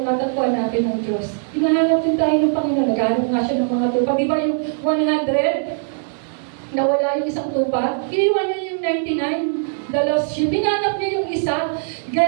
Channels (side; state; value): left; silent; digital silence